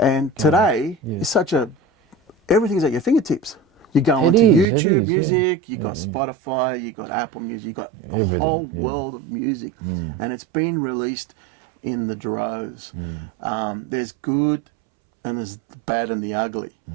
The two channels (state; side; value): drops out; left; at 4.7 s